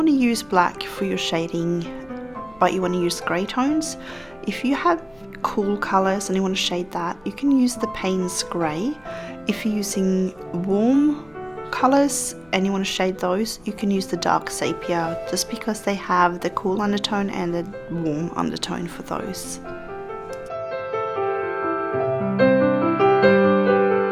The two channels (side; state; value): left; noise; hum, 30 dB below the sound